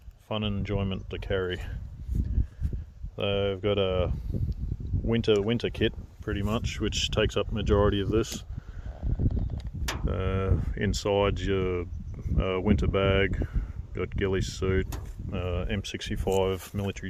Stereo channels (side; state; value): both; identical; correlation 1.00